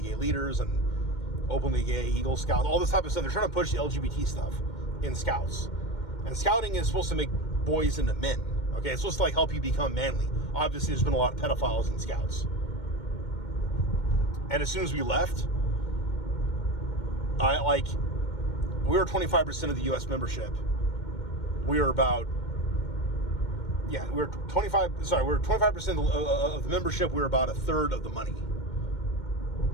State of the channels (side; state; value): right; late; 2.1 ms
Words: gay leaders and openly gay Eagle Scouts, all this type of stuff. They're trying to push the LGBT stuff in Scouts. And Scouting is supposed to make boys into men. Okay, it's supposed to help you become manly. Obviously, there's been a lot of pedophiles in Scouts. And as soon as we left, we were 25% of the U.S. membership. We were 25% of the membership. We were about a third of the money.